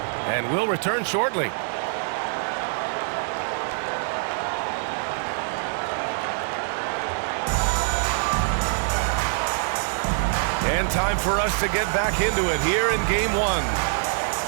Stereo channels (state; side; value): silent; left; 62 dB below the other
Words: And will return shortly. And time for us to get back into it here in game 1.